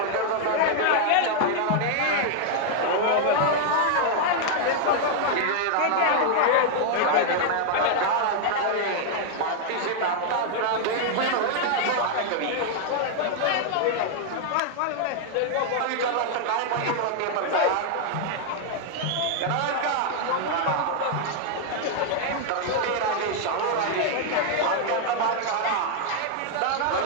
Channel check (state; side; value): different; both; correlation -0.01